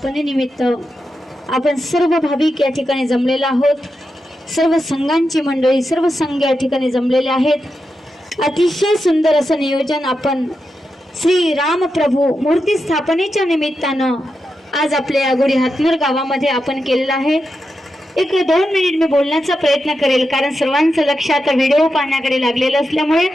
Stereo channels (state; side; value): normal; both; correlation 0.88